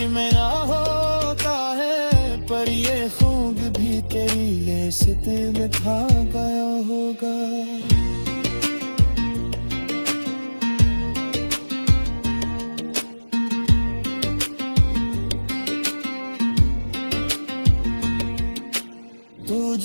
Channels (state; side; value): inverted; both; correlation -1.00